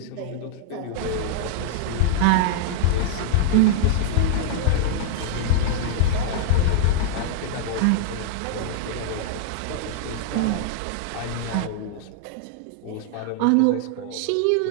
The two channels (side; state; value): both; different; correlation -0.01